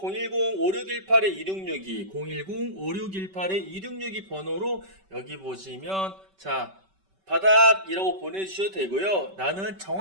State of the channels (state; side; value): late; left; 5.2 ms